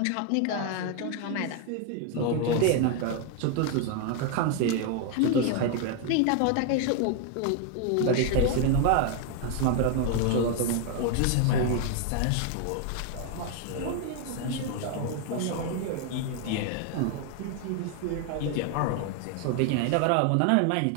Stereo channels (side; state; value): both; different; correlation 0.01